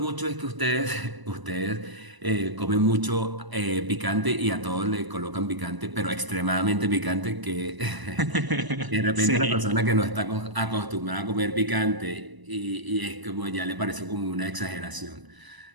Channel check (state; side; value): late; left; 1.0 ms